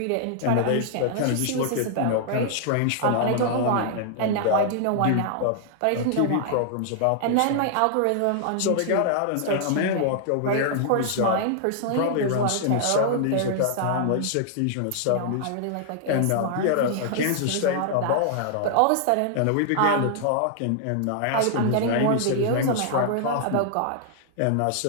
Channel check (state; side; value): different; both; correlation -0.01